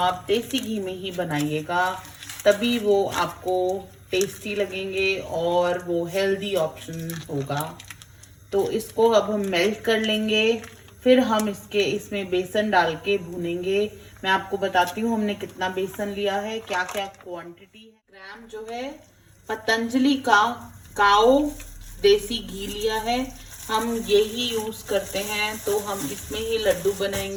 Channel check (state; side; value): identical; both; correlation 1.00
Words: देसी घी में ही बनाइएगा, तभी वो आपको टेस्टी लगेंगे और वो हेल्दी ऑप्शन होगा। तो इसको अब हम मेल्ट कर लेंगे, फिर हम इसमें बेसन डाल के भूनेंगे। मैं आपको बताती हूँ हमने कितना बेसन लिया है, क्या क्या क्वांटिटी है। ग्राम जो है पतंजलि का काओ देसी घी लिया है, हम यही यूज करते हैं। तो हम इसमें ही लड्डू